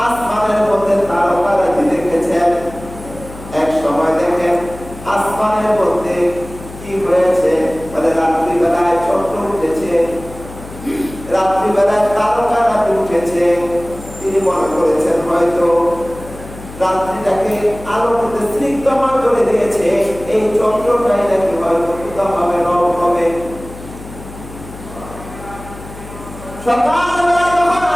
আসমানের মধ্যে তারকারাজি দেখেছেন। এক সময় দেখেন আসমানের মধ্যে কি হয়েছে, মানে রাত্রিবেলায় চন্দ্র উঠেছে, রাত্রিবেলায় তারকারাজি উঠেছে। তিনি মনে করেছেন হয়তো রাত্রিটাকে আলোতে স্নিগ্ধময় করে দিয়েছে, এই চন্দ্রটাই নাকি হয়তো কোথাও হবে, রব হবে। সকালবেলা যখন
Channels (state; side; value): noise; left; hum, 15 dB below the sound